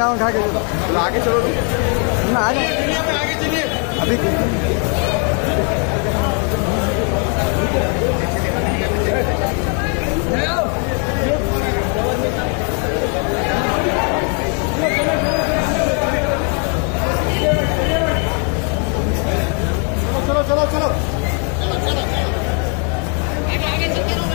के आगे चलो ना, आगे चलिए अभी। चलो चलो चलो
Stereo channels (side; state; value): right; quieter; 39.4 dB